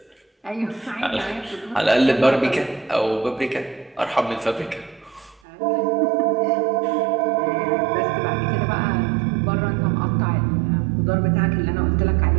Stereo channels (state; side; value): drops out; left; at 5.4 s